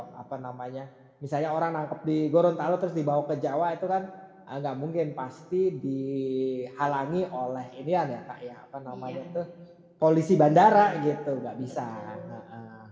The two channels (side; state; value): both; identical; correlation 1.00